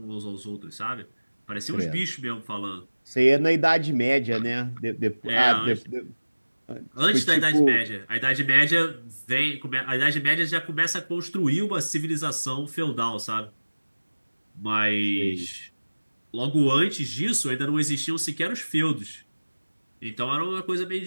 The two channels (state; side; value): inverted; both; correlation -1.00